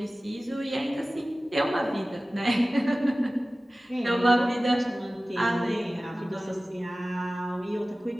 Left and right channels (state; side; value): normal; both; correlation 0.97